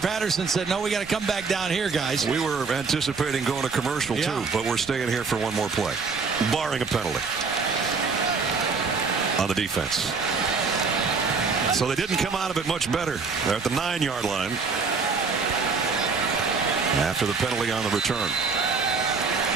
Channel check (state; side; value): quieter; left; 4.8 dB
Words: said, no, we got to come back down here, guys. We were anticipating going to commercial, too, but we're staying here for 1 more play, barring a penalty on the defense. So they didn't come out of it much better. They're at the 9-yard line after the penalty on the return.